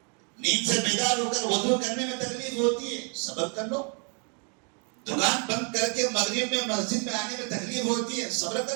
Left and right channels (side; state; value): left; quieter; 37.4 dB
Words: نیند سے بیدار ہو کر وضو کرنے میں تکلیف ہوتی ہے، صبر کر لو۔ دکان بند کر کے مغرب میں مسجد میں آنے میں تکلیف ہوتی ہے، صبر